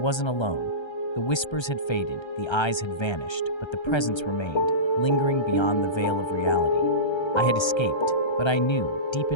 alone. The whispers had faded, the eyes had vanished, but the presence remained, lingering beyond the veil of reality. I had escaped, but I knew, deep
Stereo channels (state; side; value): late; right; 1.3 ms